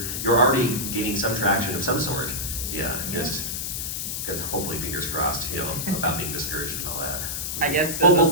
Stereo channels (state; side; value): noise; left; hiss, 3 dB below the sound